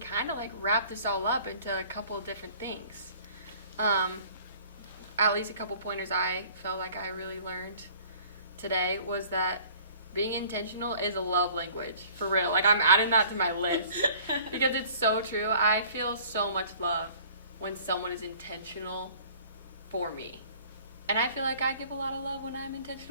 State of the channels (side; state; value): both; inverted; correlation -0.51